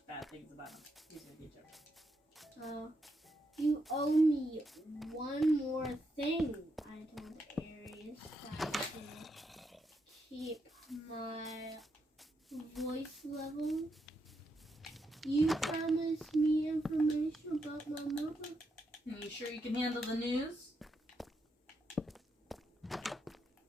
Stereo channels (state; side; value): normal; both; correlation 0.81